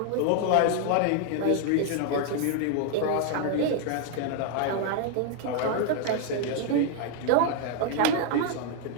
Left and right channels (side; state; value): both; different; correlation 0.00